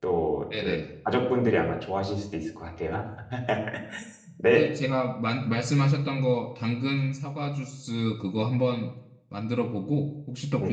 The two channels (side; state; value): both; identical; correlation 1.00